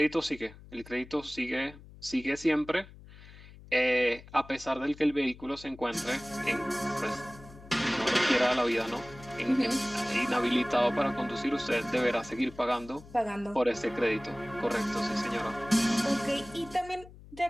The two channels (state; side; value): noise; left; hum, 19 dB below the sound